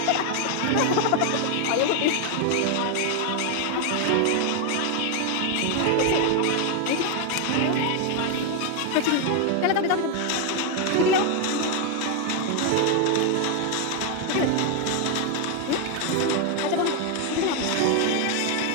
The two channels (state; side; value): different; both; correlation 0.01